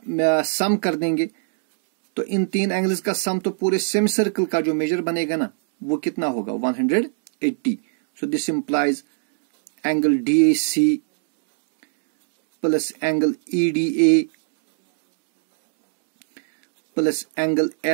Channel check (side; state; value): left; silent; digital silence